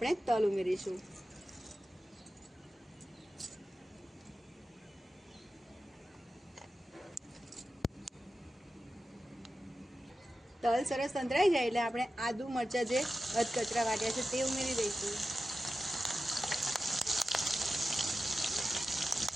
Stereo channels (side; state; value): both; normal; correlation 0.93